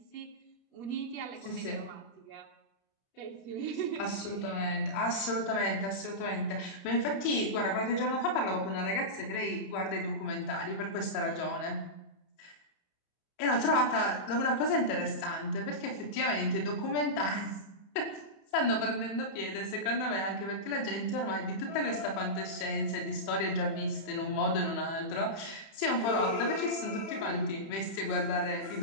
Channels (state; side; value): late; right; 31 ms